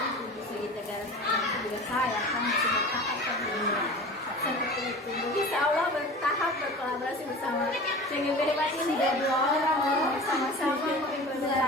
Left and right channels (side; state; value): both; normal; correlation 0.37